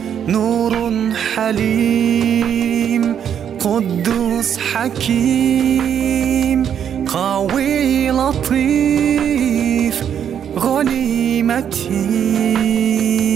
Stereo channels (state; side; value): quieter; left; 8.7 dB